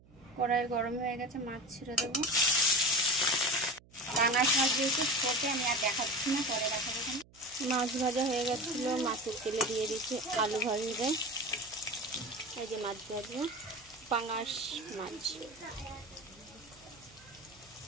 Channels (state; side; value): noise; right; hum, 26 dB below the sound